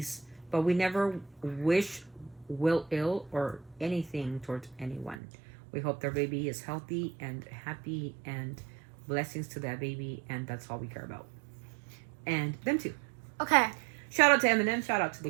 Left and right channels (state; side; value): drops out; left; at 5.2 s